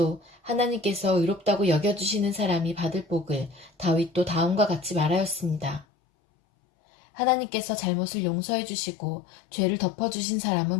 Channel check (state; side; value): drops out; right; at 5.9 s